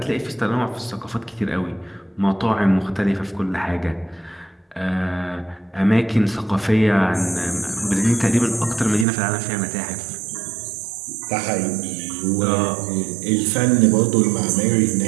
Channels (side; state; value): left; drops out; at 9.1 s